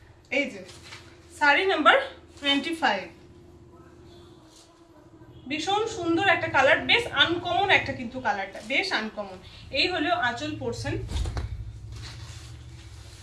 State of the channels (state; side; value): identical; both; correlation 1.00